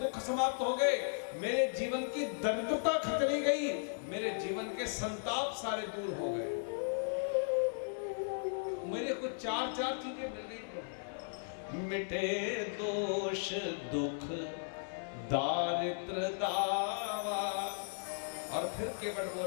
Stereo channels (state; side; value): silent; right; digital silence